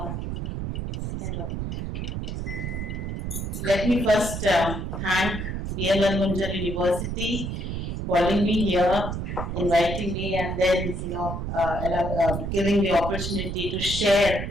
Let me first thank BMU Munjal University for calling me here, inviting me, and then giving the opportunity to share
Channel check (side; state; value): right; noise; rumble, 4 dB below the sound